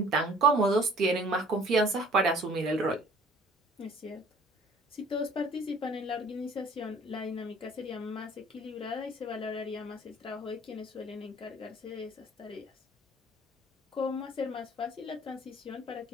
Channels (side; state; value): both; normal; correlation 0.52